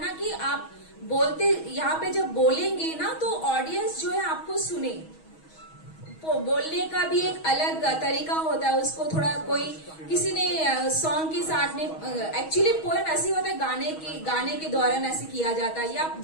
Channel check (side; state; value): right; late; 6.3 ms